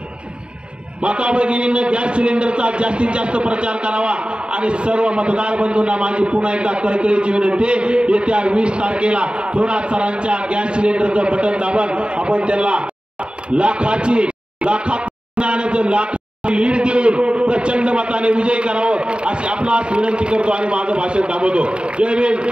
माता भगिनींना गॅस सिलेंडरचा जास्तीत जास्त प्रचार करावा आणि सर्व मतदार बंधूंना माझी पुन्हा एकदा कळकळीची विनंती, येत्या 20 तारखेला थोरात सरांच्या गॅस सिलेंडरचं बटन दाबून आपण त्यांना लाखात लीड देऊन प्रचंड मताने विजयी करावं अशी आपणास विनंती करतो आणि माझं भाषण थांबवतो. जय भीम,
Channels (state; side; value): late; left; 0.053 ms